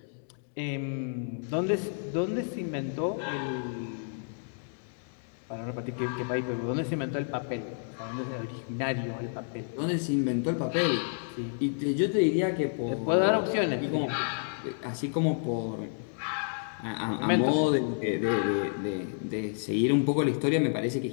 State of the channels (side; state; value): right; silent; digital silence